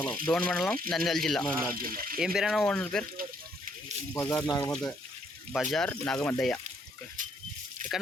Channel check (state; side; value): normal; both; correlation 0.70